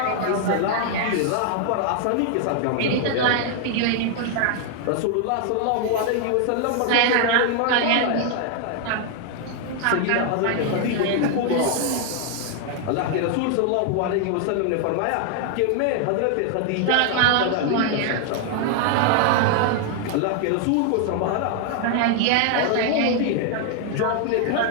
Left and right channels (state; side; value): different; both; correlation 0.00